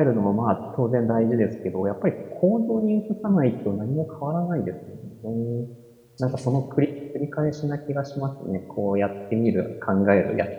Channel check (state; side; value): identical; both; correlation 1.00